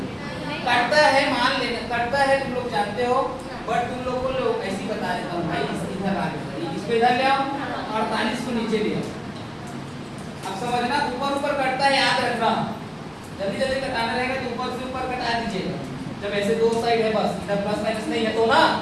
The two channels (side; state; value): both; identical; correlation 1.00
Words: कटता है, मान लेना कटता है, तुम लोग जानते हो, बट तुम लोग को ऐसे बता देता हूँ भाई, इधर आ गया, इसको इधर ले आओ, 48 को नीचे ले आओ। अब समझना, ऊपर ऊपर कटता है, याद रखना। जल्दी जल्दी कटाना रहेगा तो ऊपर से ऊपर कटा दीजिएगा। जब ऐसे दो साइड है, बस इधर प्लस माइनस नहीं है तो ना,